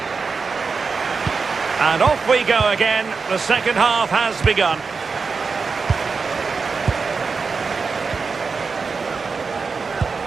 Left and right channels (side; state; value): left; quieter; 4.8 dB